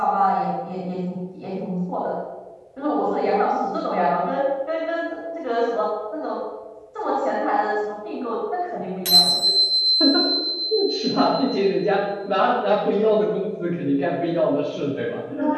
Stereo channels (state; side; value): identical; both; correlation 1.00